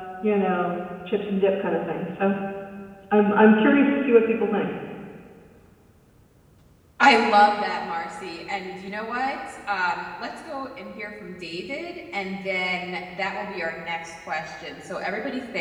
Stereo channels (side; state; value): both; identical; correlation 1.00